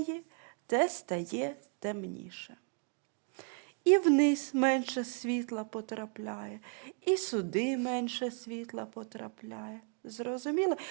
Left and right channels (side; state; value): left; quieter; 39.7 dB